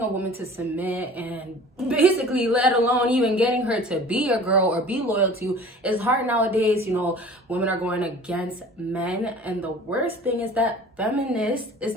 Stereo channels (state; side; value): normal; both; correlation 0.45